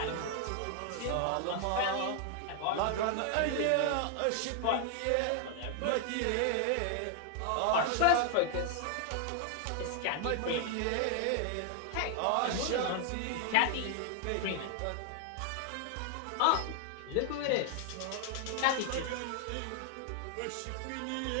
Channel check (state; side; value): different; both; correlation 0.00